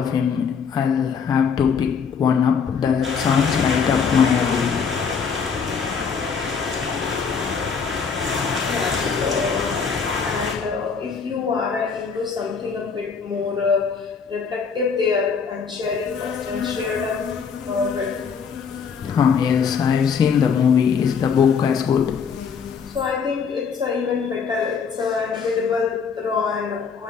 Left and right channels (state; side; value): quieter; right; 6.1 dB